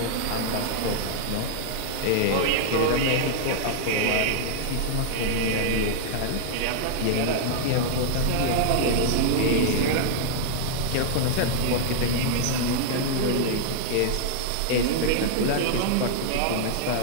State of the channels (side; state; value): both; different; correlation -0.01